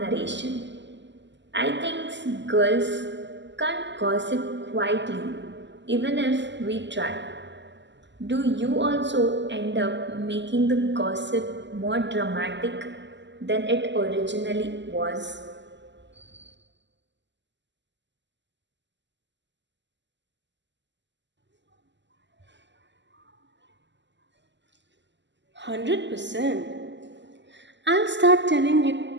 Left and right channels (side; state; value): left; late; 0.53 ms